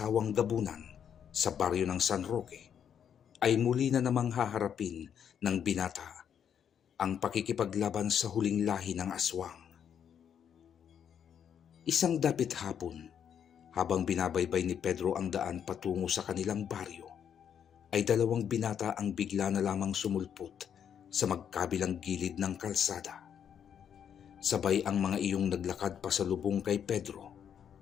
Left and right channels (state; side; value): quieter; right; 8.4 dB